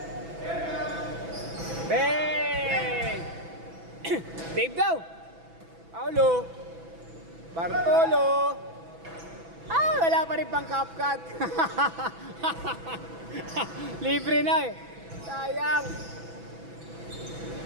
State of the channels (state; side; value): late; left; 6.0 ms